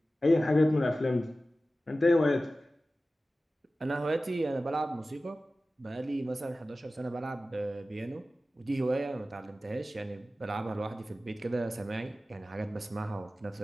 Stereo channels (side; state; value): both; normal; correlation 0.95